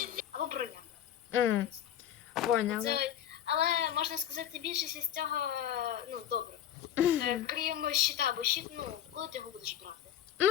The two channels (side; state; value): right; quieter; 10.4 dB